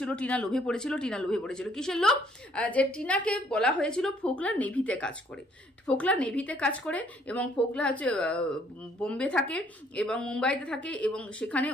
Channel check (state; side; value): normal; both; correlation 0.64